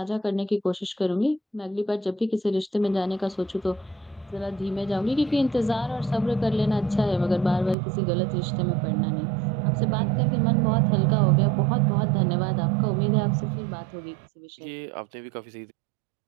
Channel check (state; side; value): drops out; left; at 7.8 s